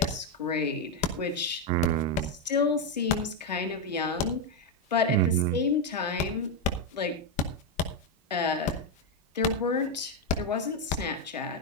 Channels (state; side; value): normal; both; correlation 0.05